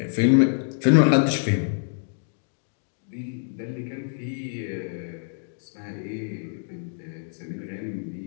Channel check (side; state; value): right; silent; digital silence